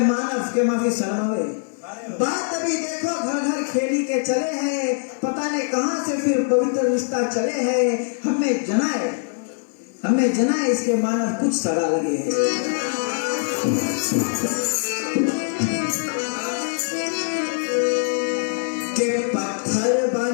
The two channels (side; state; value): right; silent; 64 dB below the other